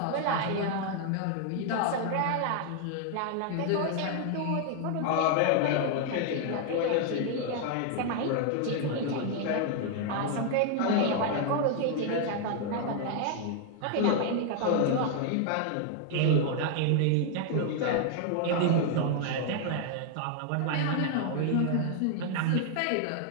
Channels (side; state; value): both; different; correlation 0.00